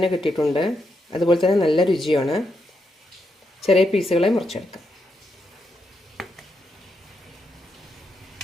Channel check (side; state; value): both; normal; correlation 0.82